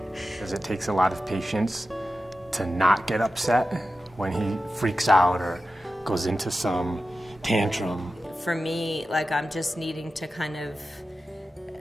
Because it takes a lot of patience to not get upset when he freaks out or goes into some tantrum. For me, like, I'm just needing to kind of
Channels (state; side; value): normal; both; correlation 0.93